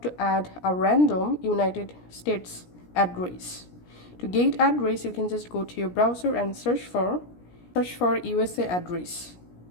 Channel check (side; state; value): right; late; 17 ms